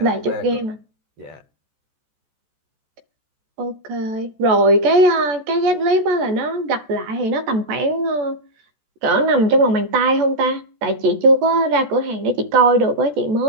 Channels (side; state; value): left; late; 14 ms